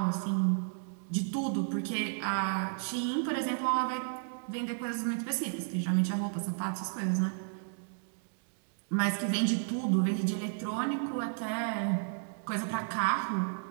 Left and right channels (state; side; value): silent; left; digital silence